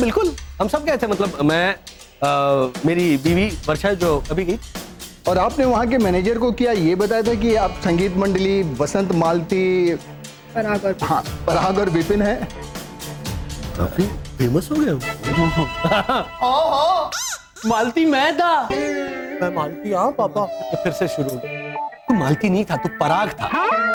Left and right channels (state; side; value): identical; both; correlation 1.00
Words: हम सब गए थे। मतलब मैं मेरी बीवी वर्षा जो अभी गई। और आपने वहाँ के मैनेजर को क्या ये बताया था कि आप संगीत मंडली वसंत मालती, पराग और हाँ पराग और विपिन है? काफी फेमस हो गए हो। मालती मैं था। मैं मालती, हाँ पापा। तो फिर से शुरू हो गया। तू मालती नहीं था, तू पराग था।